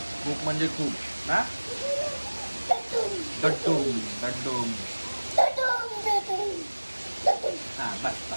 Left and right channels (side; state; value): both; inverted; correlation -1.00